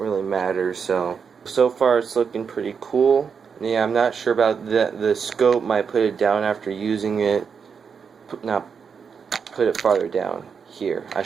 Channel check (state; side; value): quieter; left; 6.2 dB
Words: matter, so far it's looking pretty cool. Yeah, I'm not sure about the scope. Might put it down after using it. Put it farther down here. I